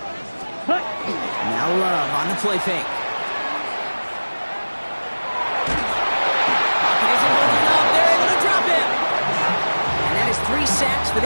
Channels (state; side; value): inverted; both; correlation -1.00